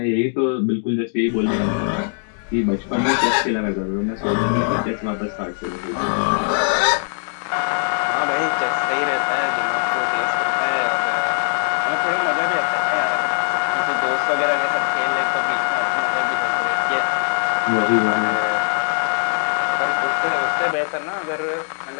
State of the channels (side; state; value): right; silent; digital silence